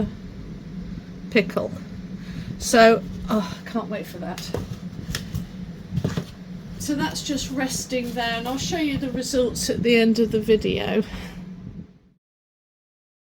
pickle. So I can't wait for that. So that's just resting there, and I'll show you the results at the end of the video.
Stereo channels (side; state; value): both; identical; correlation 1.00